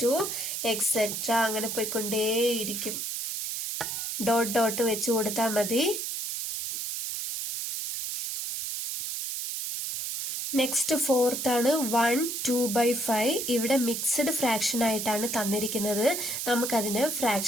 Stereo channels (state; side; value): noise; right; hiss, 2 dB below the sound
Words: എക്സെട്ര അങ്ങനെ പോയിക്കൊണ്ടേയിരിക്കും. ഡോട്ട് ഡോട്ട് വെച്ച് കൊടുത്താൽ മതി. നെക്സ്റ്റ് ഫോർത്ത് ആണ് 1 2/5. ഇവിടെ മിക്സ്ഡ് ഫ്രാക്ഷൻ ആയിട്ടാണ് തന്നിരിക്കുന്നത്. നമുക്കതിനെ